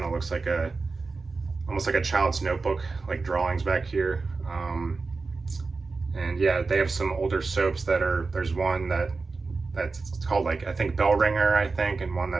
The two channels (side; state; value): left; quieter; 4.1 dB